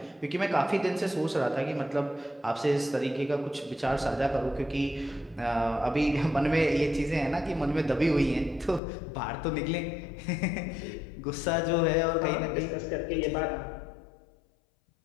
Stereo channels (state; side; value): drops out; right; at 8.8 s